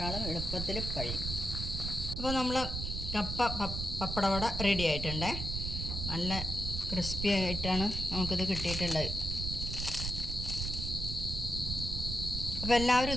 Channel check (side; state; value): right; noise; rumble, 4 dB below the sound